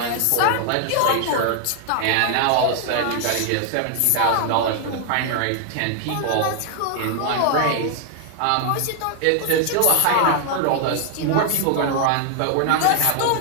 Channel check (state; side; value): different; both; correlation 0.00